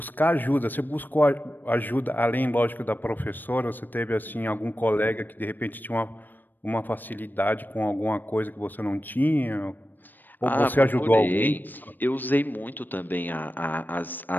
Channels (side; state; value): right; late; 0.090 ms